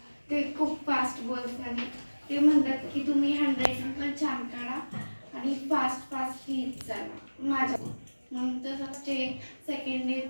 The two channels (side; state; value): both; inverted; correlation -1.00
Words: ते खूप फास्ट बोलतात. ते म्हणतात की तुम्ही हँडरायटिंग पण छान काढा आणि फास्ट फास्ट लिहित जाणार माझ्या. मग तसंच ते सेकंड